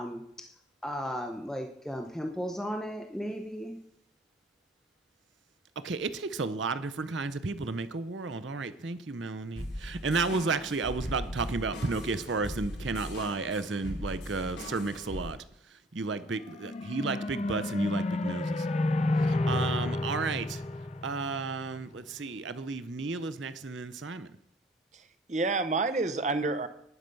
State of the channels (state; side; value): normal; both; correlation 0.54